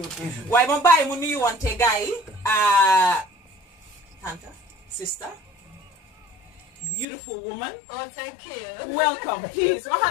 waaye ma bàyyi mu nuyu wante gars yi. Tanta, sister, beautiful woman. Oh, thank you. Welcome, please.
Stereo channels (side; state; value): right; drops out; at 7.1 s